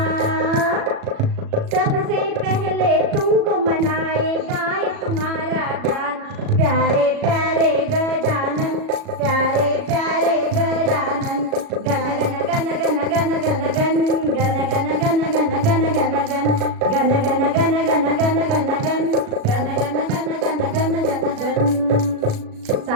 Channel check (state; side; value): late; left; 37 ms